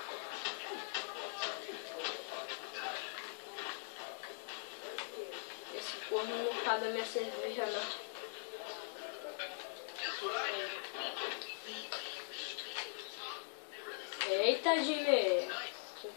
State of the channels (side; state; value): right; silent; digital silence